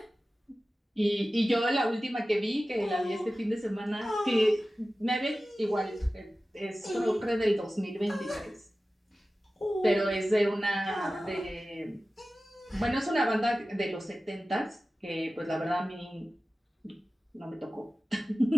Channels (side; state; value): both; normal; correlation 0.96